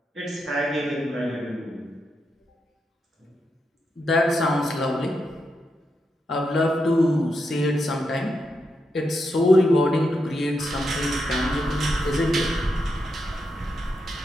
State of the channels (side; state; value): both; normal; correlation 0.84